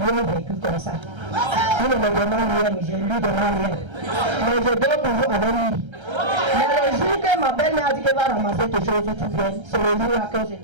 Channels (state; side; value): late; left; 1.3 ms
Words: ont vécu comme ça. Il ne me demande rien, je lui demande rien. Mais je dors toujours avec lui. Mais le jour que ma belle-mère a dit qu'elle va ramasser quelque chose, tu viens, c'est le jour-là qu'on s'est